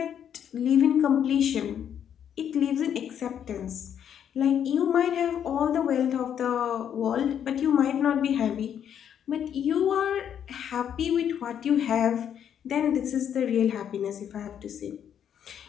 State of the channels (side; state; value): right; quieter; 9.0 dB